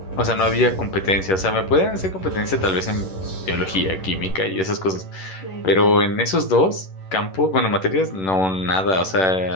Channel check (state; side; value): late; right; 11 ms